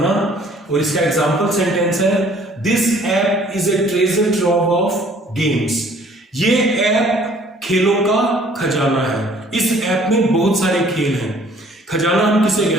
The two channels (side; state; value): both; normal; correlation 0.56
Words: और इसका एग्जांपल सेंटेंस है this app is a treasure trove of games. ये ऐप खेलों का खजाना है। इस ऐप में बहुत सारे खेल हैं। खजाना हम किसे